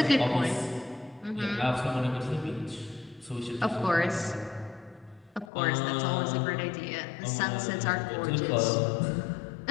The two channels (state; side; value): drops out; right; at 5.5 s